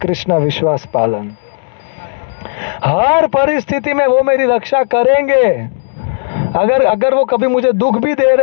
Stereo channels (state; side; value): silent; right; digital silence